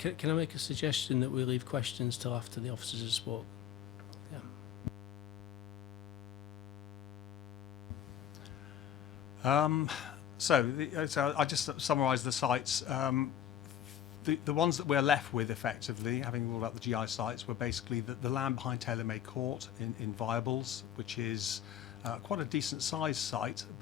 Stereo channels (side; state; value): right; quieter; 10.3 dB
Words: Can I make a suggestion that we leave questions till after the officers have spoke? So I just summarise the sites. The ones that we're left with, effectively, having ruled out the GI sites, were basically the land behind Tailor-Made Court in Viables, which is quite a decent sized site,